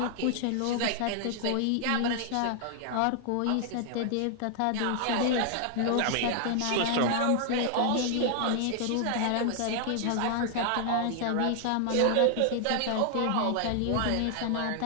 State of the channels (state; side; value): different; both; correlation 0.00